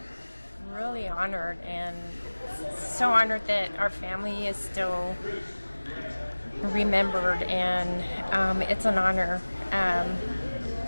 Really honored, and so honored that our family is still remembered, and it's an honor.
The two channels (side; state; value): both; inverted; correlation -1.00